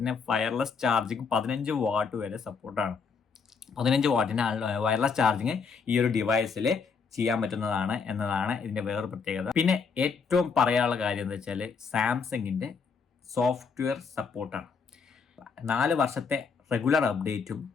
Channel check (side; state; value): right; quieter; 5.5 dB